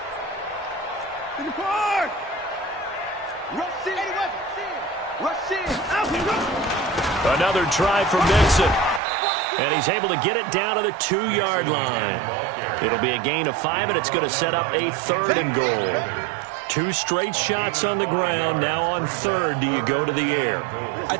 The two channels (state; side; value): drops out; left; at 9.0 s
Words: 54. Rush in. Another try for Mixon. And he's able to get it down to the 2-yard line. It'll be a gain of 5, and it's going to set up a 3rd and goal. 2 straight shots on the ground. Now on 3rd, do you go to the air? I